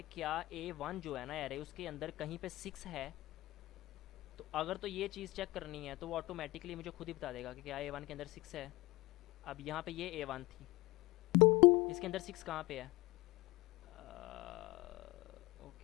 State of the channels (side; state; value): right; quieter; 20.4 dB